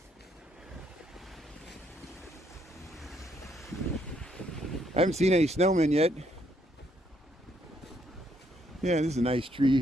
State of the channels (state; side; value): normal; both; correlation 0.72